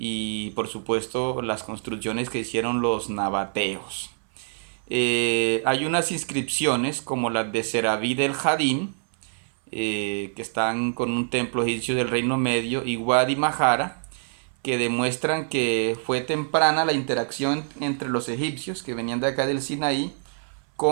por supuesto las construcciones que hicieron los nabateos. Hay unas inscripciones como las de Serabí del Jadín, que están con un templo egipcio del Reino Medio, y Wadi Mahara, que demuestran que fue temprana la interacción entre los egipcios que venían de acá del Sinaí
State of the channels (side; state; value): left; silent; 61 dB below the other